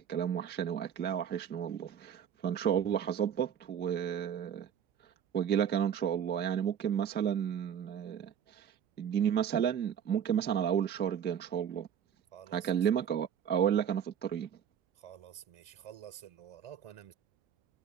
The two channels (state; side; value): quieter; left; 8.7 dB